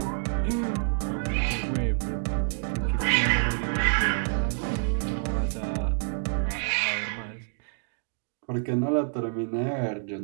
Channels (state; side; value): silent; left; digital silence